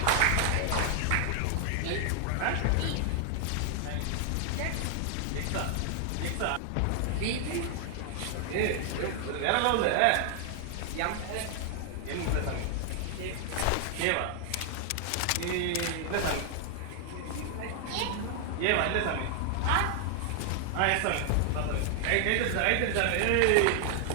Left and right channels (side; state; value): both; different; correlation 0.00